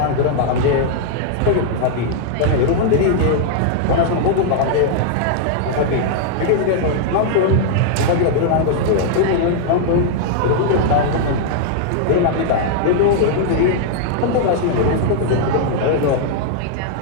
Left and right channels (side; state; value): both; different; correlation -0.01